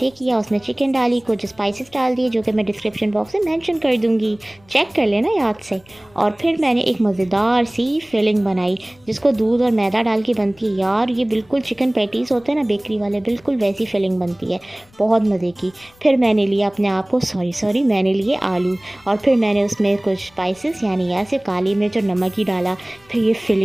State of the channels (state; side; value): noise; left; rumble, 29 dB below the sound